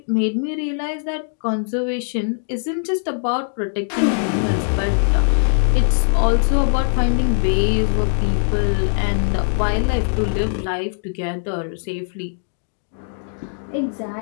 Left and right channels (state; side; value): silent; right; digital silence